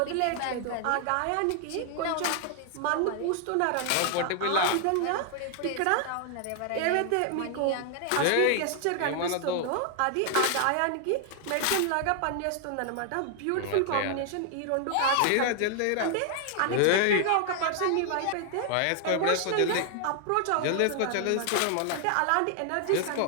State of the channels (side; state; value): both; different; correlation 0.00